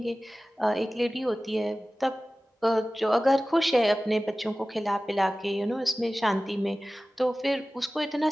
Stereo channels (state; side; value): normal; both; correlation 0.97